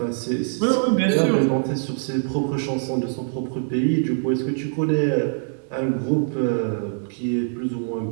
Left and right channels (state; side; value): silent; left; 63 dB below the other